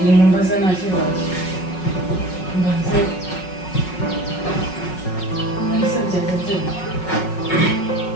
mbaza nta kibazo. Mbanze ese byagenze bite?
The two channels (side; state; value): right; late; 5.4 ms